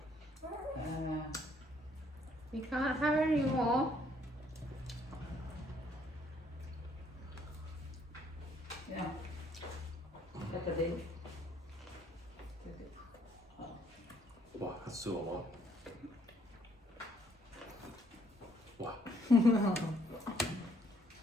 You can't have any more. Yeah. Look at it. Wow, that's still a lot. Wow.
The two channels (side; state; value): both; normal; correlation 0.67